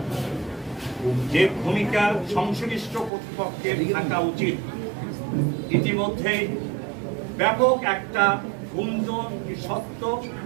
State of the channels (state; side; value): drops out; left; at 3.1 s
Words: যে ভূমিকা সংশ্লিষ্ট কর্তৃপক্ষের থাকা উচিত, ইতিমধ্যেই ব্যাপক একটা গুঞ্জন সত্য